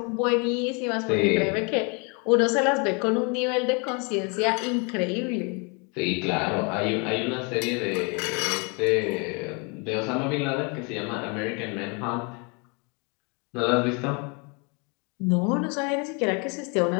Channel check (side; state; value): right; quieter; 32.5 dB